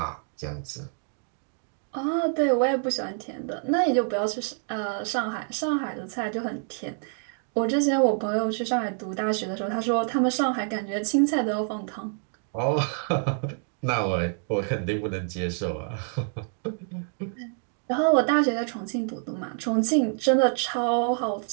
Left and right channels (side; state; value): left; silent; 56 dB below the other